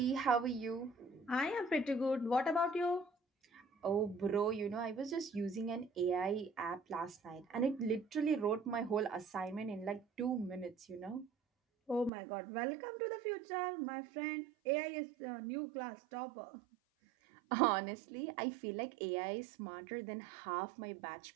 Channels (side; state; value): left; drops out; at 12.1 s